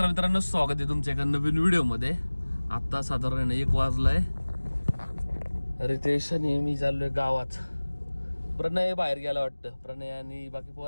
मित्रांनो, स्वागत आहे तुमच्या एका नवीन व्हिडिओ मध्ये. आता साधारण 1 वाजलाय. रितेश आणि मी चाललोय गावात. प्रणय बाहेर गेला वाटतं, प्रणय आणि बाकी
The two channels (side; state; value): both; inverted; correlation -1.00